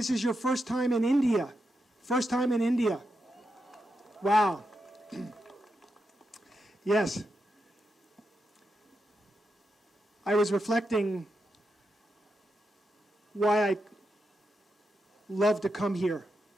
is your first time in India. First time in India. Wow. Yes. I was reflecting why I love to come here,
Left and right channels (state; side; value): normal; both; correlation 0.86